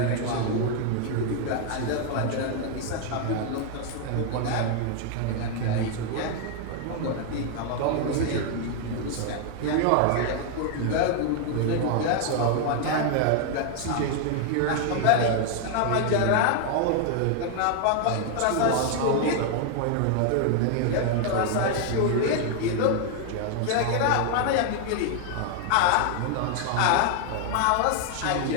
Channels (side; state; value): both; different; correlation 0.00